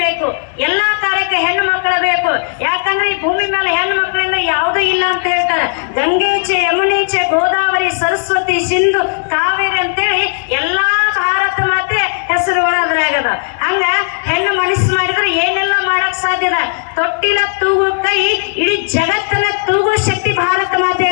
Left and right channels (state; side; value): silent; right; digital silence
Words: ಎಲ್ಲಾ ಕಾರ್ಯಕ್ಕೆ ಹೆಣ್ಣು ಮಕ್ಕಳ ಬೇಕು. ಯಾಕಂದ್ರೆ ಈ ಭೂಮಿ ಮೇಲೆ ಹೆಣ್ಣು ಮಕ್ಕಳಿಂದ ಯಾವುದೂ ಇಲ್ಲ ಅಂತ ಹೇಳ್ತಾರೆ. ಗಂಗೇಚೆ, ಯಮುನೇಚೆ, ಗೋದಾವರಿ, ಸರಸ್ವತಿ, ಸಿಂಧು, ಕಾವೇರಿ ಅಂತೇಳಿ ಎಲ್ಲಾ ಭಾರತ ಮಾತೆ ಹೆಸರುಗಳು ಅದ್ರಾಗದ. ಹಂಗ ಹೆಣ್ಣು ಮನಸ್ಸು ಮಾಡಿದ್ರೆ ಏನೆಲ್ಲ ಮಾಡಕ್ ಸಾಧ್ಯದ. ತೊಟ್ಟಿಲ ತೂಗು ಕೈ ಇಡೀ ಜಗತ್ತನ್ನ ತೂಗೋ ಶಕ್ತಿ ಭಾರತ ಮಾತೆ